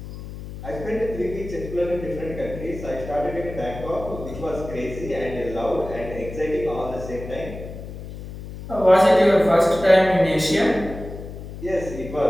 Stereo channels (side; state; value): left; noise; hum, 11 dB below the sound